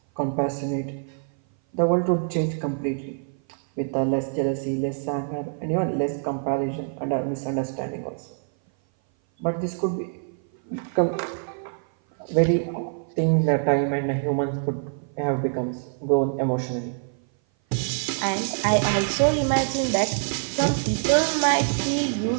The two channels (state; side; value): silent; left; 57 dB below the other